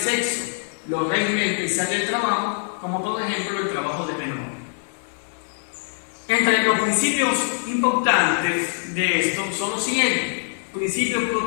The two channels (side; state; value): right; silent; digital silence